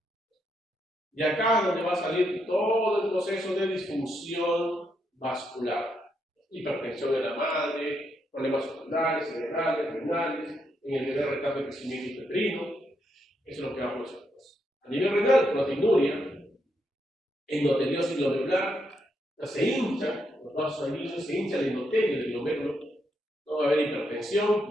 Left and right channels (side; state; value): both; normal; correlation 0.79